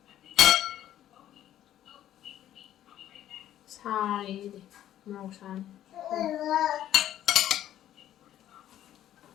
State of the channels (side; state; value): right; quieter; 11.9 dB